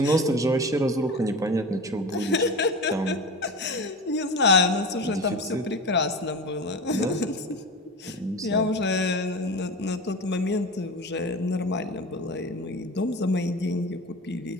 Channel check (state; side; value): normal; both; correlation 0.29